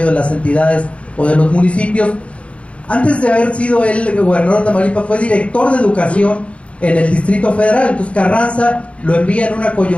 de las entidades o de los municipios. Antes de haber sido el gobernador de Tamaulipas, fue director de educación en el Distrito Federal. Entonces Carranza lo envía en una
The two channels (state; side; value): late; right; 0.062 ms